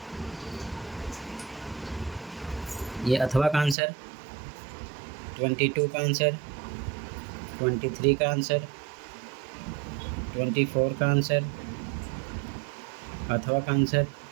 ये अथवा का आंसर, 22 का आंसर, 23 का आंसर, 24 का आंसर, अथवा का आंसर,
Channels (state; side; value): drops out; left; at 3.8 s